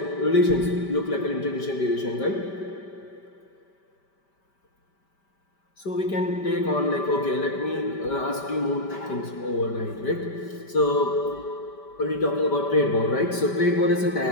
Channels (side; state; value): right; late; 5.1 ms